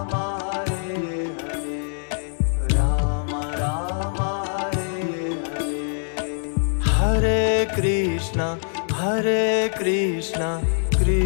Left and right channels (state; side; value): silent; right; digital silence